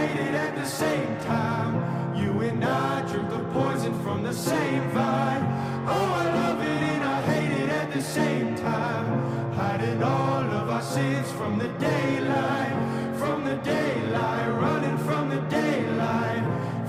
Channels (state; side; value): identical; both; correlation 1.00